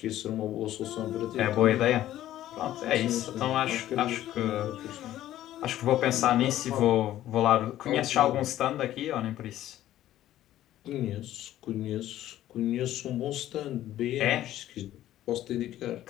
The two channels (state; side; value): quieter; right; 13.3 dB